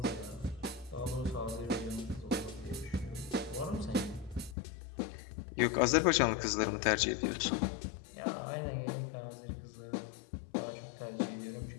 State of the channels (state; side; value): drops out; right; at 4.5 s